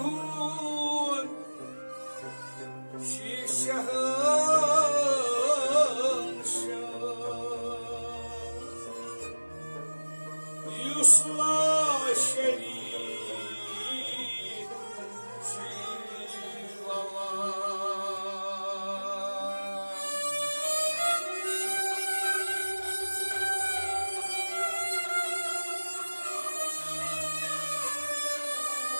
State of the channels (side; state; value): both; inverted; correlation -1.00